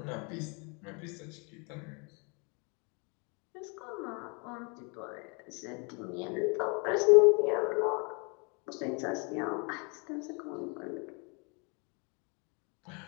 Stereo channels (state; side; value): quieter; right; 33.2 dB